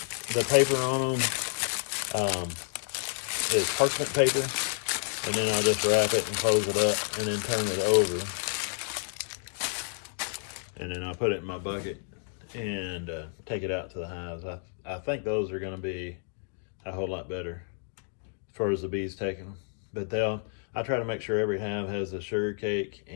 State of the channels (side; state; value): right; silent; 58 dB below the other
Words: paper on them is parchment paper, and then I'll just wrap it and close it up, and then turn it over. And then I'll put it in my bucket and take it out to the hives. I think those are going to be a whole lot better as far as the bees taking them. But I try to make sure every hive has a sugar cake